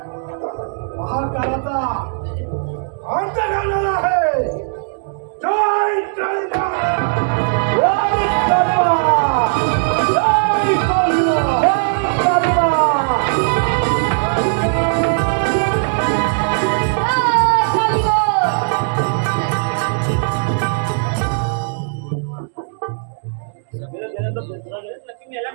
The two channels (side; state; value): left; silent; digital silence